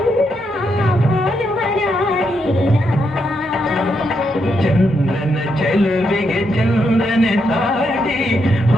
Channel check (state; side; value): normal; both; correlation 0.80